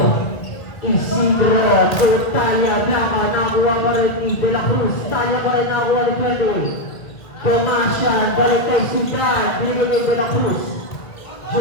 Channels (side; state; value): right; late; 2.2 ms